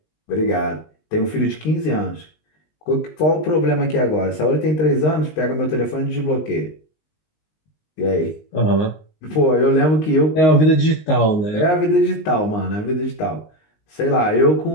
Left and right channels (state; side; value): late; right; 19 ms